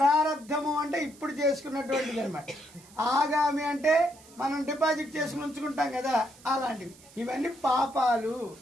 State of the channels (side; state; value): right; noise; hiss, 23 dB below the sound